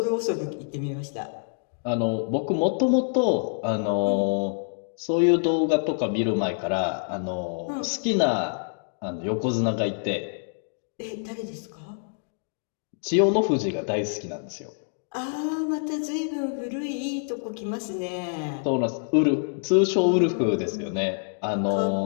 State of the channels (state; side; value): silent; right; digital silence